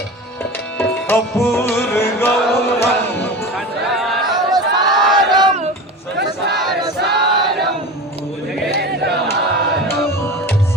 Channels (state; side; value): normal; both; correlation 0.30